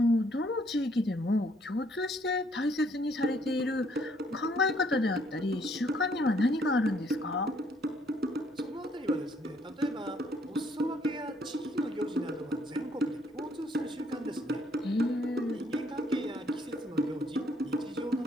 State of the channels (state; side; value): normal; both; correlation 0.67